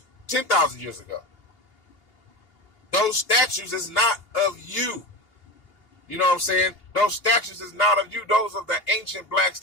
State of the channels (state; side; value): late; right; 2.8 ms